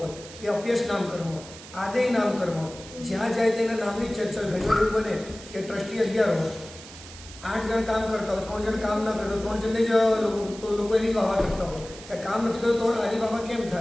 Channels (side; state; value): right; noise; hiss, 16 dB below the sound